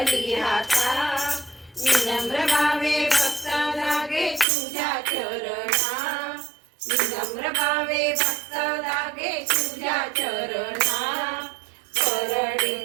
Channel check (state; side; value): drops out; left; at 4.5 s